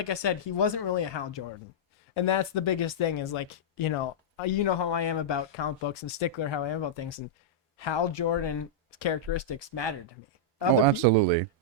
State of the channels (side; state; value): both; normal; correlation -0.10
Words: I said, he wasn't really a Hal Jordan, and that's the biggest thing. Is you know how I am about comic books and stickler how I am about things, and Hal Jordan's characteristics mattered to me. Absolutely.